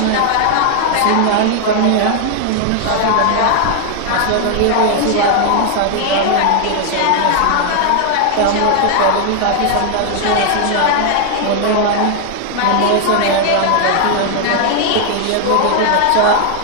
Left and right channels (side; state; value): both; different; correlation 0.00